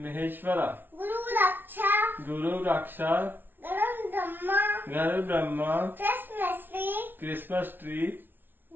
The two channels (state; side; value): late; left; 0.097 ms